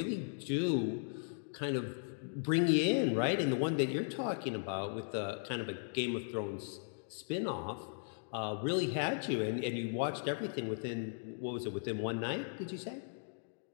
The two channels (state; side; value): silent; right; digital silence